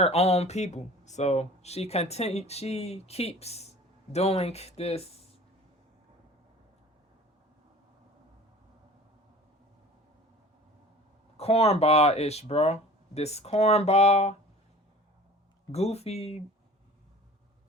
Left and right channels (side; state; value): both; normal; correlation 0.43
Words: own people. So she keeps doing this cornball-ish, bro. This cornball, goofy,